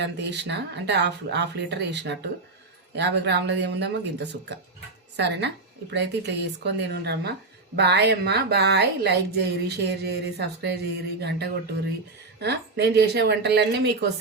అంత వేసిన, అంటే హాఫ్ లీటర్ వేసినట్టు. 50 గ్రాములది ఏముందమ్మా గింత సుక్క. సరేనా? ఇప్పుడైతే ఇట్లా చేసుకొని తినుండ్రమ్మా. బాయ్ అమ్మా, బాయ్. లైక్ చేయరి, షేర్ చేయరి, సబ్స్క్రైబ్ చేయరి, గంట కొట్టుర్రి. నేను చేసే వంటలన్నీ మీకు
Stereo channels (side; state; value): left; quieter; 3.5 dB